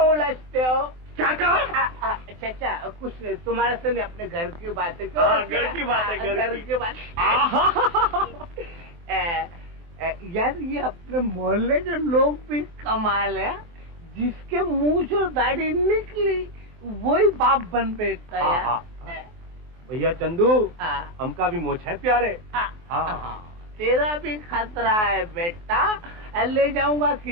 उलझते हो? क्या कहा? चाचा कुछ नहीं, तुम्हारे से नहीं, अपने घर की बातें। घर की बात है, घर की बात। यार ये अपने मोहल्ले के लोग भी कमाल है, जिसके मूंछ और दाढ़ी निकली वही बाप बन बैठता है यार। भैया चंदू, हमका भी मोछ है प्यारे। तेरा भी खतरा है बेटा। ले जाऊंगा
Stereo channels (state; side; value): late; left; 23 ms